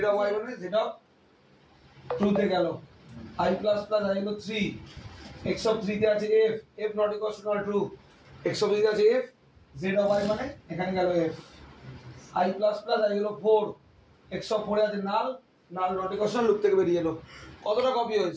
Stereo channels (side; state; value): both; identical; correlation 1.00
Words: অফ আই মানে জেড অফ 2 তে গেল। আই প্লাস প্লাস আই হলো 3, এক্স অফ 3 তে আছে F not equal two true. X of 3 তে আছে এফ, জেড অফ আই মানে এখানে গেল F. I plus plus I হলো 4, এক্স অফ 4 এ আছে নাল নট ইকুয়াল টু লুপ থেকে বেরিয়ে এলো। কতটা কপি